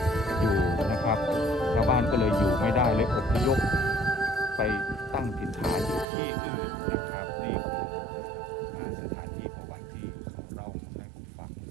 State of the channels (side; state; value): left; drops out; at 6.1 s